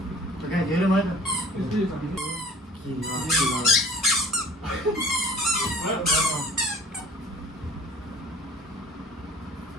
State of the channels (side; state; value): both; normal; correlation 0.48